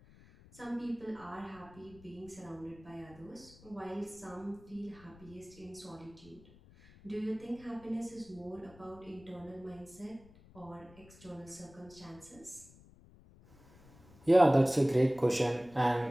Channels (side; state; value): left; noise; rumble, 23 dB below the sound